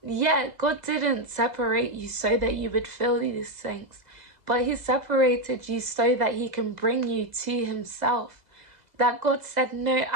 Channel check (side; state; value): left; late; 2.0 ms